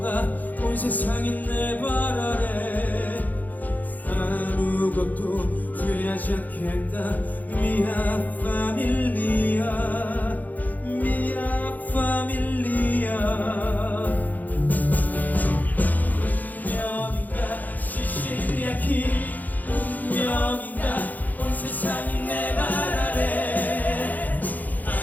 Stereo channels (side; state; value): right; late; 0.082 ms